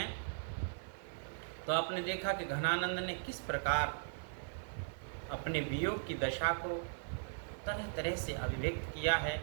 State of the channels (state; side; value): silent; left; 52 dB below the other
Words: तो आपने देखा कि घनानंद ने किस प्रकार अपने वियोग की दशा को तरह तरह से अभिव्यक्त किया है,